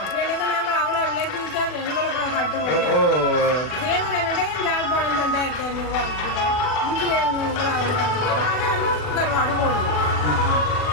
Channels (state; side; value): late; right; 40 ms